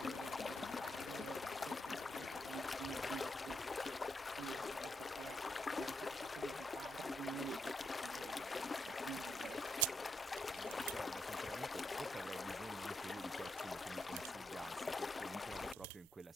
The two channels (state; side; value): normal; both; correlation 0.80